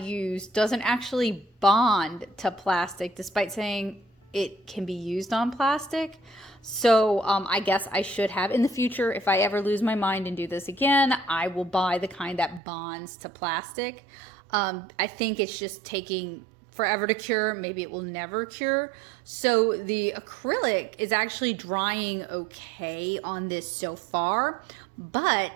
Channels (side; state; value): left; drops out; at 12.6 s